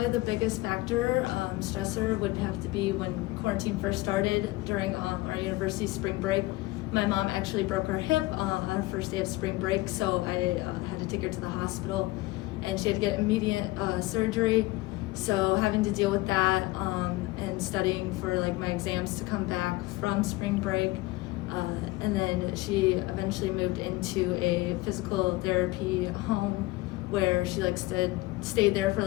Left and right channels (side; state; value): right; quieter; 20.1 dB